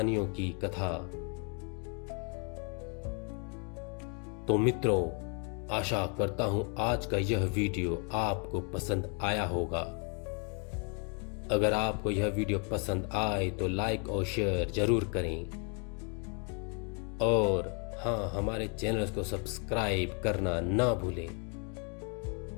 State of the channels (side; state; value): right; quieter; 37.9 dB